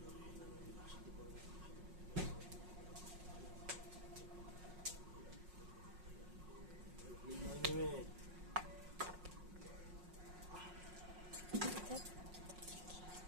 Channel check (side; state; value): left; late; 5.5 ms